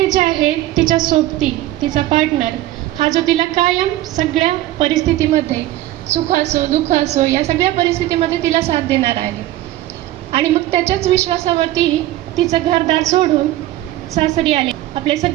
जे आहे तिच्या सोबती तिचा पार्टनर हा जो तिला कायम सगळ्या परिस्थितीमध्ये सुख असो दुःख असो या सगळ्या परिस्थितीमध्ये तिला साथ देणार आहे. आणि मग त्याच्याच विश्वासावरती तिचं घरदार सोडून सासरी आले. आपले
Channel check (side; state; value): left; quieter; 15.3 dB